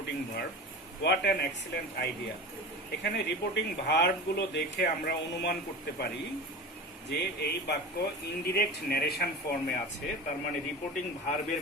verb. What an excellent idea. এখানে reporting ভার্বগুলো দেখে আমরা অনুমান করতে পারি যে এই বাক্য ইনডিরেক্ট ন্যারেশন ফর্মে আছে, তার মানে রিপোর্টিং ভার্বের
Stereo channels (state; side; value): normal; both; correlation 0.31